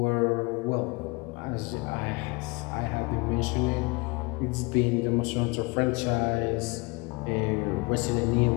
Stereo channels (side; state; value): right; quieter; 27.1 dB